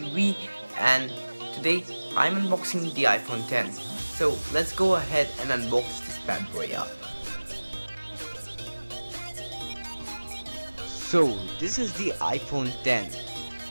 and today I'm unboxing the iPhone 10. So let's go ahead and unbox this bad boy up. So this is the iPhone 10.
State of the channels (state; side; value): inverted; both; correlation -1.00